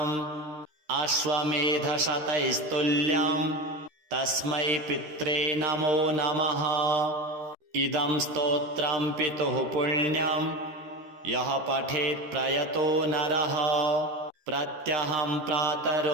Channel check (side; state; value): left; late; 13 ms